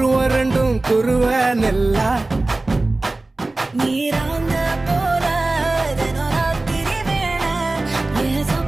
ரெண்டும் குருவ நெல்லா நீராங்க போல ராத்திரி வேண என்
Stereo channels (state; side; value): quieter; left; 3.0 dB